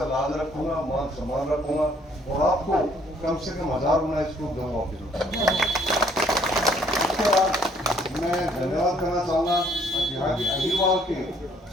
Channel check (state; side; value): normal; both; correlation 0.62